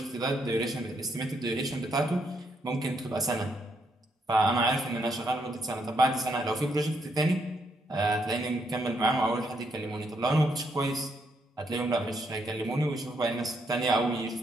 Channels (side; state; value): both; normal; correlation 0.76